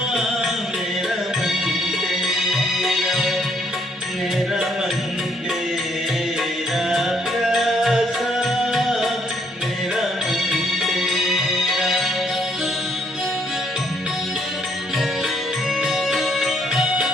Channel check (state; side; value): normal; both; correlation 0.69